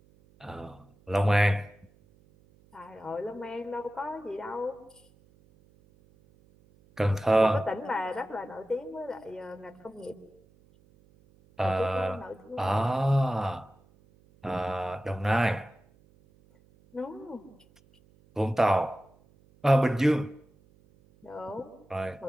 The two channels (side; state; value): right; noise; hum, 30 dB below the sound